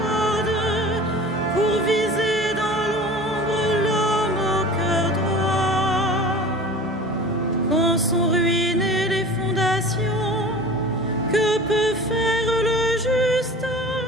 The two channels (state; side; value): normal; both; correlation 0.39